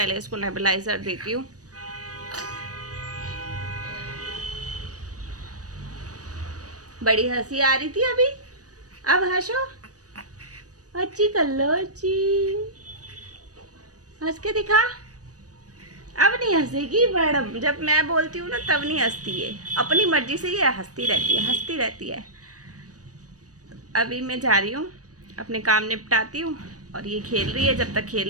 इसको नेबुलाइज़र देती हूँ। बड़ी हंसी आ रही थी अभी, अब हंसो, अच्छी कर लो, अच्छी हंस के दिखा। अब नहीं हंसेगी मैडम, जब मैं बोलती हूँ ना तब नहीं हंसती है, अपनी मर्जी से ये हंसती रहती है, हंसती रहती है। अभी मैं जा रही हूँ, अपने काम निपटाती हूँ, और ये खेल रही है। जब तक खेल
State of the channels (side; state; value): left; late; 0.67 ms